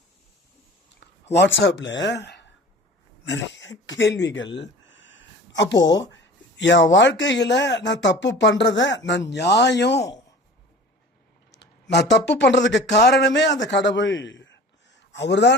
வாட்ஸ்அப்ல நிறைய கேள்விகள். அப்போ என் வாழ்க்கையில நான் தப்பு பண்றத நான் தப்பு பண்றதுக்கு காரணமே அந்த கடவுள். அவர்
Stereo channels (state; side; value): normal; both; correlation 0.41